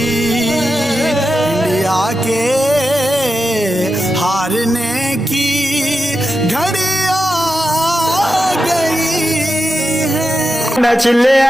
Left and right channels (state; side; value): normal; both; correlation 0.89